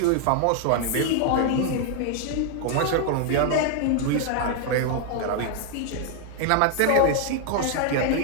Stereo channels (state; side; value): different; both; correlation 0.00